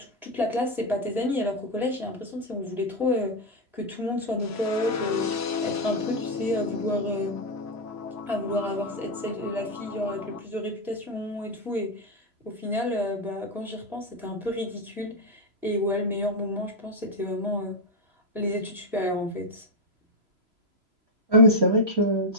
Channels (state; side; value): late; left; 3.0 ms